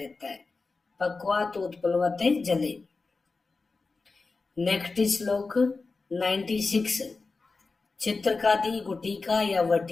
है। पक्वात उत्पलवते जले। नेक्स्ट श्लोक 96, चित्रकादि गुटिका या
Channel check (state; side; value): quieter; right; 4.0 dB